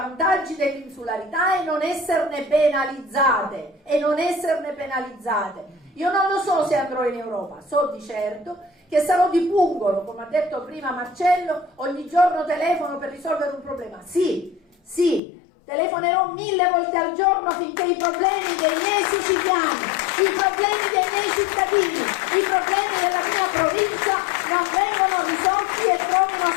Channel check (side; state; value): right; drops out; at 15.2 s